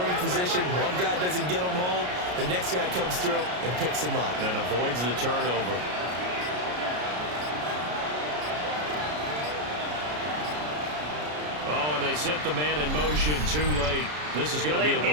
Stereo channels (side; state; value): left; late; 33 ms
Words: position. One guy doesn't get them home. The next guy comes through and picks him up. And avoids the turnover. Oh, and they set the man in motion too late. This is going to be a